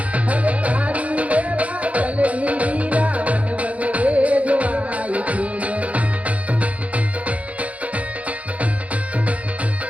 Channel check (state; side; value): late; left; 0.066 ms